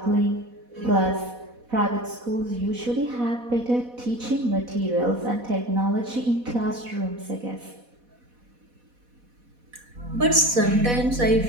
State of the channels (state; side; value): late; left; 4.1 ms